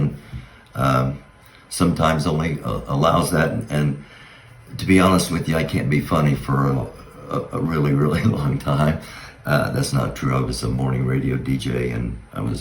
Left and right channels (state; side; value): identical; both; correlation 1.00